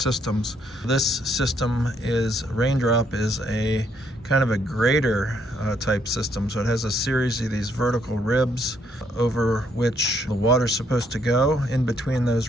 This system is, RainDrop is a kind of a Grater type system. So it has a series of these vertical ribs over which the water's supposed to go in between those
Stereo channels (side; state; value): both; normal; correlation 0.71